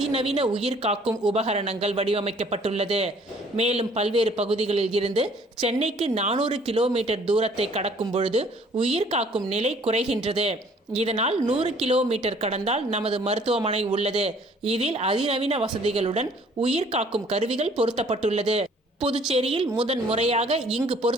உயிர் காக்கும் உபகரணங்கள் வடிவமைக்கப்பட்டுள்ளது. மேலும் பல்வேறு பகுதிகளில் இருந்து சென்னைக்கு 400 கிலோமீட்டர் தூரத்தை கடக்கும் பொழுது உயிர் காக்கும் நிலை குறைகின்றது. இதனால் 100 கிலோமீட்டர் கடந்தால் நமது மருத்துவமனை உள்ளது. இதில் அதிநவீன வசதிகளுடன் உயிர் காக்கும் கருவிகள் பொருத்தப்பட்டுள்ளது. புதுச்சேரியில் முதன் முறையாக இங்கு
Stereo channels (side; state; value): both; normal; correlation 0.57